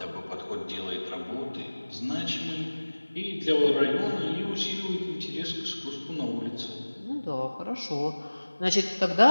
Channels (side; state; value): both; inverted; correlation -1.00